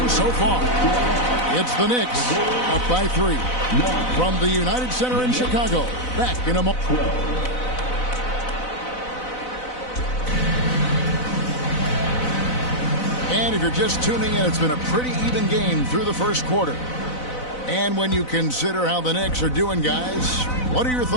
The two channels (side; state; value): right; late; 4.0 ms